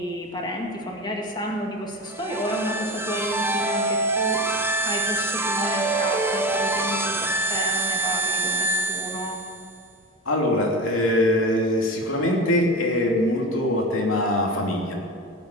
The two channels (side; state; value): both; normal; correlation 0.26